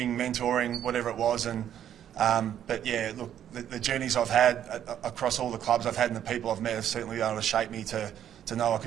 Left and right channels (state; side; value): quieter; left; 10.2 dB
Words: mentoring, whatever it was. But yeah, look, the journeys I've had across all the clubs I've had and the people I've met have certainly been able to shape me to know I